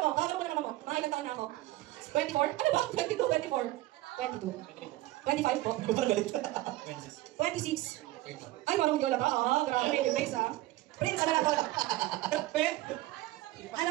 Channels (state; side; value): quieter; left; 17.2 dB